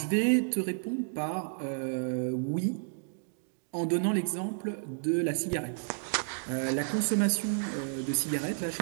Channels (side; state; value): left; silent; digital silence